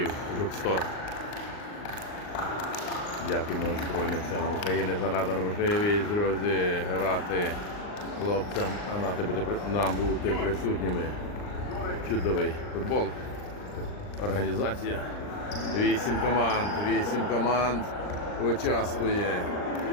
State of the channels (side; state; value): right; late; 39 ms